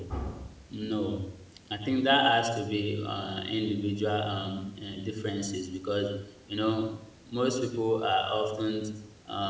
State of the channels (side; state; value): both; identical; correlation 1.00